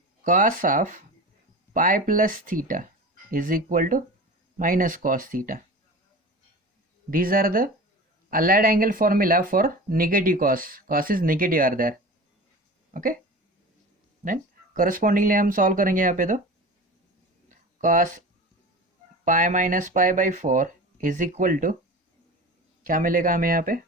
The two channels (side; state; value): both; normal; correlation 0.34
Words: cos of pi plus theta is equal to minus cos theta. These are the allied angle formula for negative cos. Cos is negative are there. Okay. Then correspondingly हम solve करेंगे यहाँ पे. तो cos pi minus pi by 4 is equal to क्या मिलेगा हमें यहाँ पे,